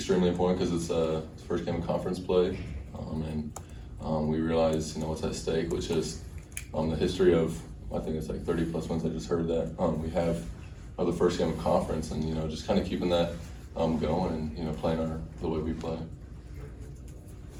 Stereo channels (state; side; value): identical; both; correlation 1.00